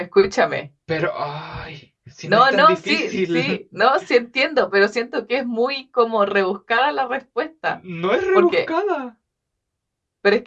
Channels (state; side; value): identical; both; correlation 1.00